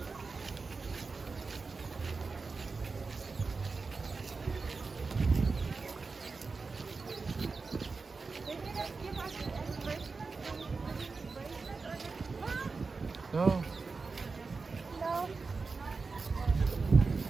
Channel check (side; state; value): left; quieter; 4.3 dB